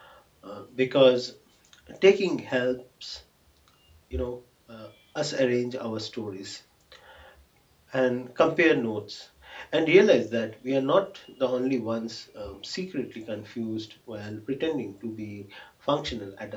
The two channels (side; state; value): both; identical; correlation 1.00